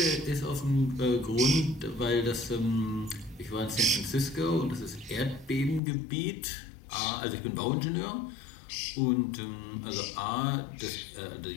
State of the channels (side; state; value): right; drops out; at 5.8 s